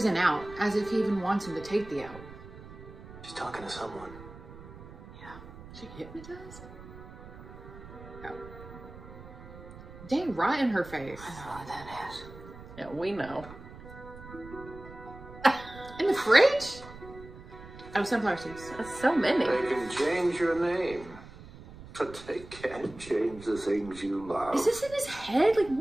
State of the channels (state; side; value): noise; right; rumble, 16 dB below the sound